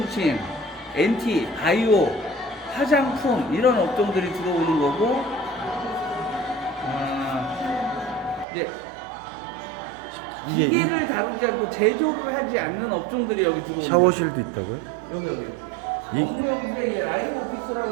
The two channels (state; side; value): drops out; left; at 8.5 s